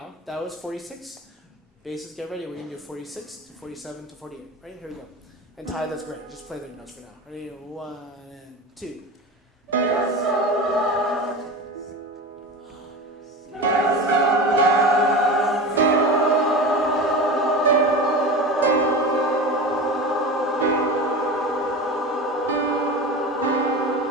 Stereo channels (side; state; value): both; normal; correlation 0.28